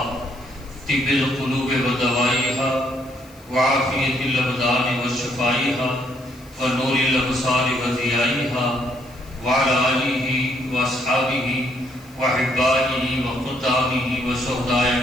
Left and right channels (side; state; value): left; noise; hiss, 26 dB below the sound